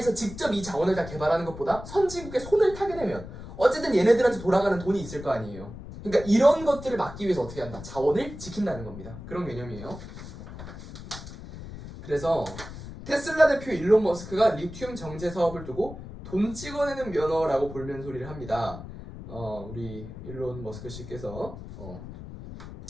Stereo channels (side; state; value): left; noise; rumble, 12 dB below the sound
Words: 직접 이 자원을 다 개발하는 것보다 선진국의 손을 타게 되면 어쨌든 얘네들한테 돌아가는 돈이 있을 거 아니에요. 그러니까 이런 것들을 막기 위해서 어떻게 한다? 자원을 지킨다는 겁니다. 그런 개념이에요. 그래서 테슬라 대표 일론 머스크가 리튬 정제 사업을 두고 돈 찍어내는 면허라고 볼면 소리를 합니다. 우리 일론 머스크 씨께서